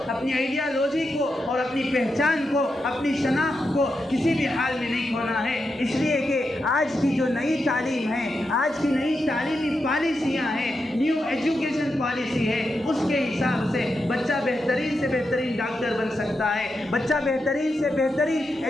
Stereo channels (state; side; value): normal; both; correlation 0.86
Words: اپنی آئیڈیالوجی کو اور اپنی پہچان کو، اپنی شناخت کو کسی بھی حال میں نہیں کھونا ہے۔ اس لیے کہ آج کی جو نئی تعلیم ہے، آج کی نئی تعلیمی پالیسیاں ہیں، نیو ایجوکیشن پالیسی ہے، اس کے حساب سے بچہ بہترین سے بہترین ڈاکٹر بن سکتا ہے، بچہ بہترین سے بہترین